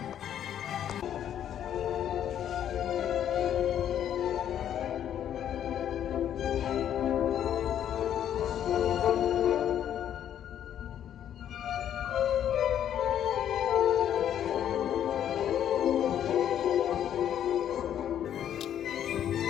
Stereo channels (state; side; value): quieter; right; 10.1 dB